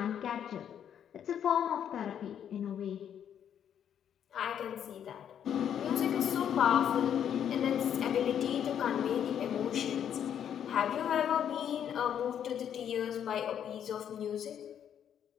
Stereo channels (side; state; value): right; quieter; 9.1 dB